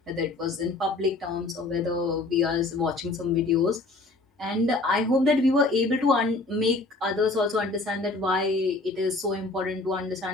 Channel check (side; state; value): right; quieter; 3.2 dB